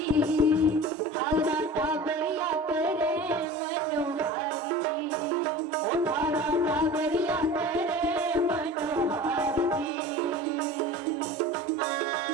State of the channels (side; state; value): both; normal; correlation 0.38